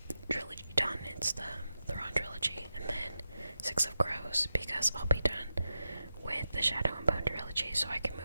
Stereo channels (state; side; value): inverted; both; correlation -0.90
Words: trilogy done. It's the Thrawn trilogy, and then Six of Crows, because I'll be done with the Shadow and Bone trilogy, so I can